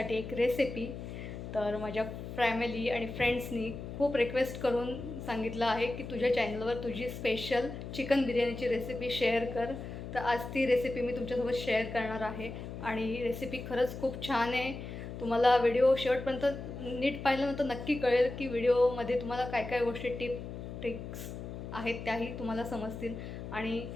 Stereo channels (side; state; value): left; noise; hum, 9 dB below the sound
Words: एक रेसिपी. तर माझ्या फॅमिली आणि फ्रेंड्सनी खूप रिक्वेस्ट करून सांगितलं आहे की तुझ्या चॅनलवर तुझी स्पेशल चिकन बिर्याणीची रेसिपी शेअर कर. तर आज ती रेसिपी मी तुमच्यासोबत शेअर करणार आहे आणि ही रेसिपी खरंच खूप छान आहे. तुम्हाला व्हिडिओ शेवटपर्यंत नीट पाहिल्यानंतर नक्की कळेल की व्हिडिओमध्ये तुम्हाला काय काय गोष्टी ट्रिक्स आहेत त्याही तुम्हाला समजतील आणि